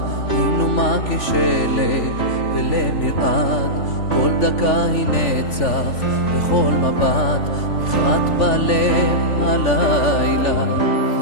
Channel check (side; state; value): right; late; 3.4 ms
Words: היא כשלג ולב נרעד, כל דקה היא נצח וכל מבט נחרט בלב הלילה.